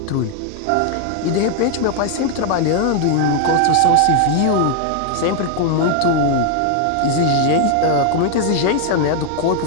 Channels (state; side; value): different; both; correlation 0.00